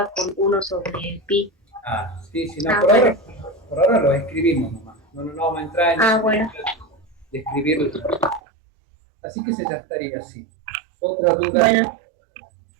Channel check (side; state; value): left; drops out; at 8.4 s